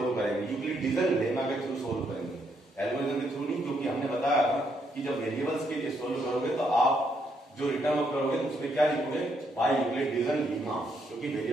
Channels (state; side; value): normal; both; correlation 0.75